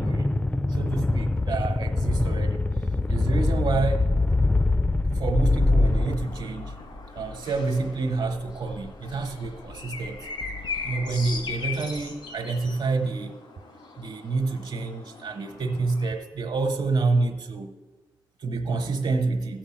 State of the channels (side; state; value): both; normal; correlation 0.85